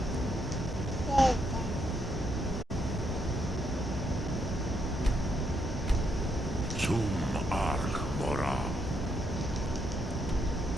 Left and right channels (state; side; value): normal; both; correlation 0.76